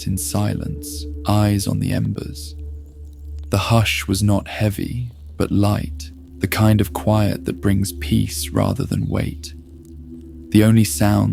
in silence, eyes on the embers. The hush was not heavy, but light, the kind of quiet that brings peace rather than weight. The only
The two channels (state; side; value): identical; both; correlation 1.00